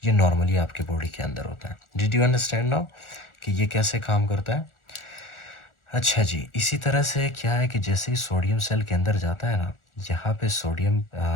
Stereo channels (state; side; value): late; right; 1.4 ms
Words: ये नॉर्मली आपके बॉडी के अंदर होता है. डिड यू अंडरस्टैंड नाउ कि ये कैसे काम करता है? अच्छा जी, इसी तरह से क्या है कि जैसे ही सोडियम सेल के अंदर जाता है ना, यहाँ पे सोडियम